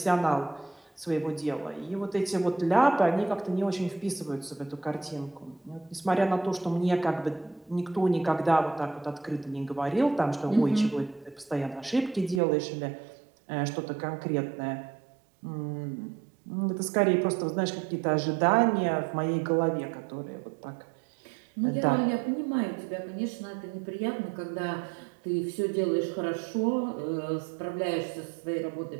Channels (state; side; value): drops out; left; at 12.4 s